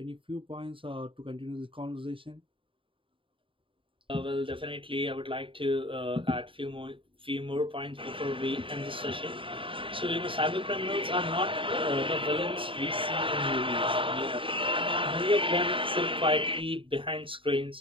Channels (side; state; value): left; late; 0.25 ms